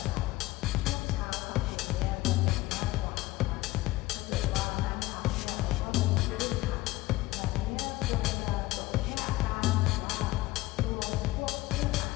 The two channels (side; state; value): right; quieter; 18.3 dB